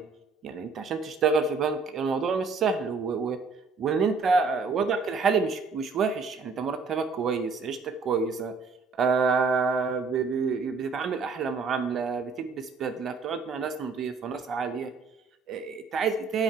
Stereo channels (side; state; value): left; quieter; 4.7 dB